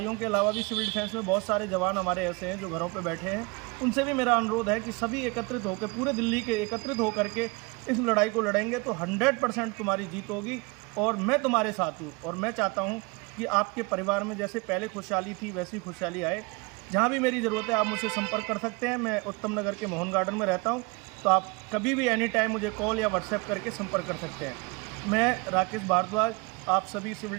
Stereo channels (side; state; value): left; quieter; 27.7 dB